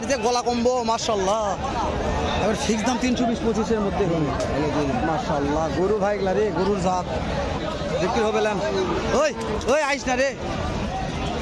যে গলা কম্বো মাশাল্লাহ। এবার ফিক্স দাম 320-25-এর মধ্যে হবে মাশাল্লাহ। গরু ভাই গলা রে, গরুর জাত বিক্রি হবে। ওই ওই আইস না রে,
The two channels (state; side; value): identical; both; correlation 1.00